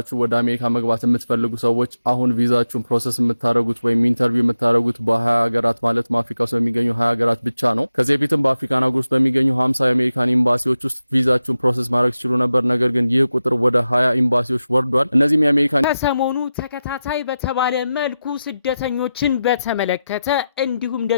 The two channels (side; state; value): both; inverted; correlation -0.91